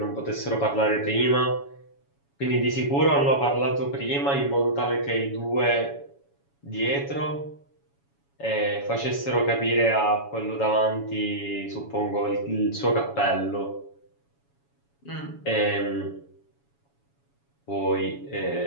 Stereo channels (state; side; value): late; right; 7.2 ms